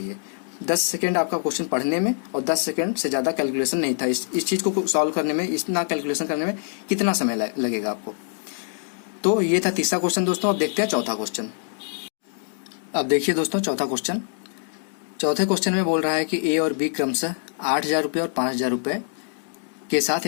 10 सेकंड आपका क्वेश्चन पढ़ने में और 10 सेकंड से ज़्यादा कैलकुलेशन नहीं था। इस चीज़ को सॉल्व करने में, इतना कैलकुलेशन करने में कितना समय लगेगा आपको। तो ये था तीसरा क्वेश्चन दोस्तों। अब देखते हैं चौथा क्वेश्चन। अब देखिए दोस्तों चौथा क्वेश्चन। चौथे क्वेश्चन में बोल रहा है कि ए और बी क्रमशः 8,000 रुपये और 5,000 रुपये के साथ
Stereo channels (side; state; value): right; silent; 62 dB below the other